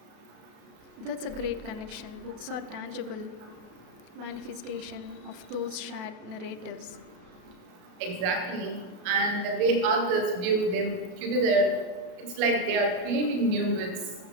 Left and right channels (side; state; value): left; late; 33 ms